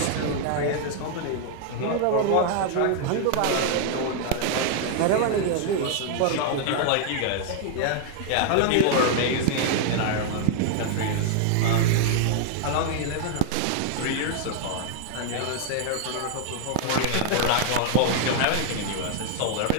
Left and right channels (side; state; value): both; different; correlation 0.00